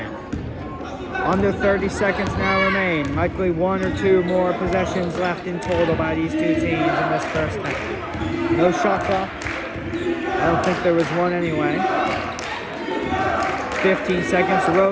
Under 30 seconds now remain. Likely 1 or 2 more possessions left in total by these 2 teams in this first half. No shot clock. I don't think there was one anyway. 15 seconds.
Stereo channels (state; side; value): identical; both; correlation 1.00